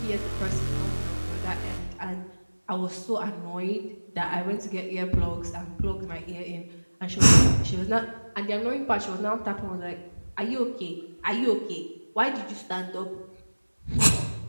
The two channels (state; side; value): inverted; both; correlation -1.00